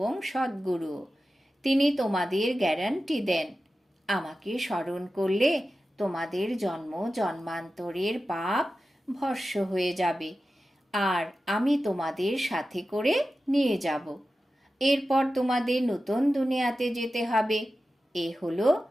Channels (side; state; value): both; normal; correlation 0.93